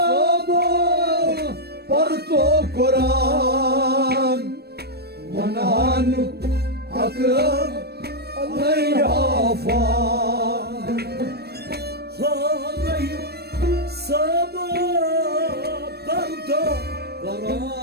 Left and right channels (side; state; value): left; late; 0.47 ms